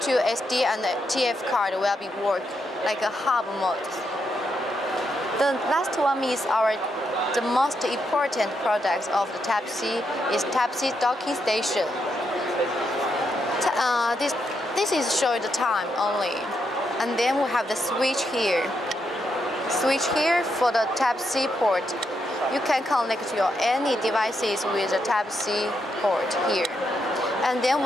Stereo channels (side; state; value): both; normal; correlation 0.81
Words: 2 SD and TF card will be work like a hub mode. The last one is the most important product of the Type C is Type C docking station. This is showing the time only, and then we have the switch here. Switch here for the Type C port. You can connect your any devices with the Type C port here. And then